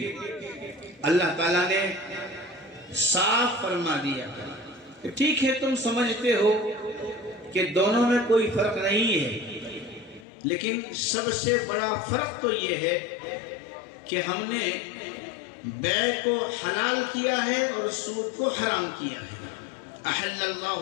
اللہ تعالیٰ نے صاف فرما دیا کہ ٹھیک ہے، تم سمجھتے ہو کہ دونوں میں کوئی فرق نہیں ہے، لیکن سب سے بڑا فرق تو یہ ہے کہ ہم نے بیع کو حلال کیا ہے اور سود کو حرام کیا ہے۔ احل اللہ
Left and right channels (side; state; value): right; drops out; at 10.2 s